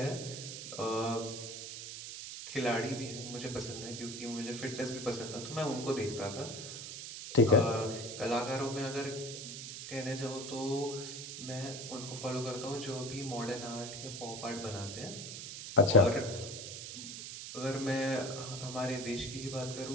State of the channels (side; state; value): right; noise; hiss, 8 dB below the sound